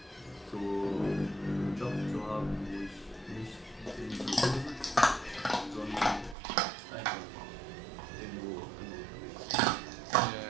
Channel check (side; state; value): left; drops out; at 6.4 s